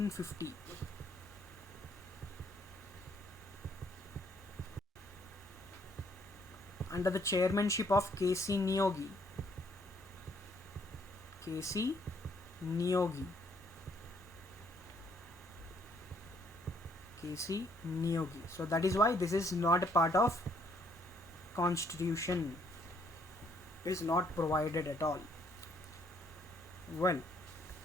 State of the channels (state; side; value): normal; both; correlation 0.67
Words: Under the chairmanship of K.C. Niyogi. K.C. Niyogi. K.C. Niyogi. So that is why this is not a part of constitution. It is not provided at all. Well,